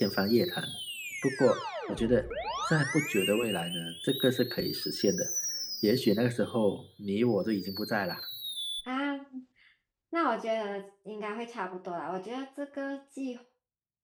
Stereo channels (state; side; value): identical; both; correlation 1.00